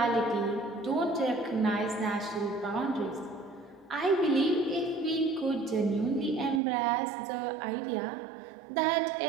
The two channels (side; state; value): left; drops out; at 6.6 s